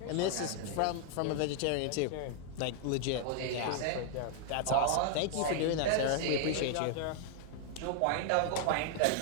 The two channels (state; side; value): different; both; correlation 0.00